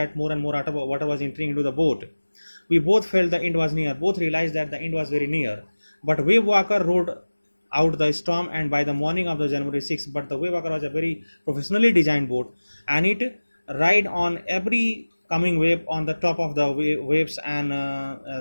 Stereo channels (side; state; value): both; inverted; correlation -1.00